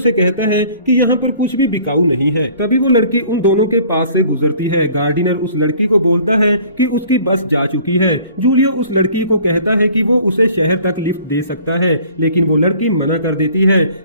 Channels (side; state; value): both; inverted; correlation -0.52